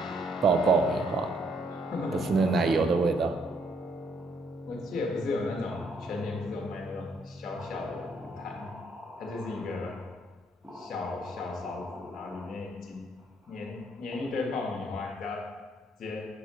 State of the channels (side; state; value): both; normal; correlation 0.70